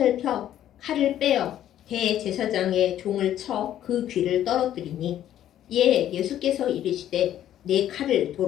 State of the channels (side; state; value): right; quieter; 11.6 dB